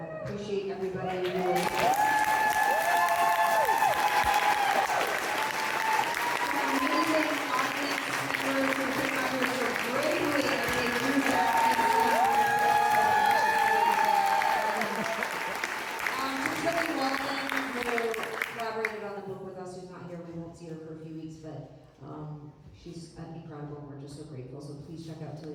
appreciate everybody who amazing audience members who came out here so bravely and they do that. Just really Walden, who collaborated on the book with us, who's not here. We won't see her for a few weeks, but she's incredible, and we're just so grateful. So please check out Tilly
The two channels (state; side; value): identical; both; correlation 1.00